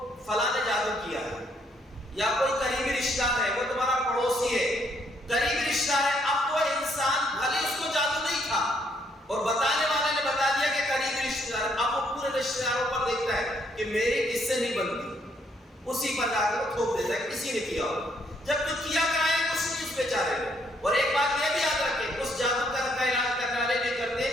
فلاں نے جادو کیا ہے، یا کوئی قریبی رشتہ ہے، وہ تمہارا پڑوسی ہے، قریبی رشتہ ہے، اب وہ انسان بھلے اس کو جادو نہیں تھا اور بتانے والے نے بتا دیا کہ قریبی رشتہ دار، اب وہ پورے رشتہ داروں پر دیکھتا ہے کہ میری کس سے نہیں بنتی، اسی پر جا کر وہ تھوپ دیتا ہے کسی نے کیا ہو، جب تو کیا کرائے کچھ نہیں اس بیچارے کو۔ اور ایک بات یہ بھی یاد رکھیں، اس جادو کا علاج کرنے والے بھی کرتے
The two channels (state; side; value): normal; both; correlation 0.70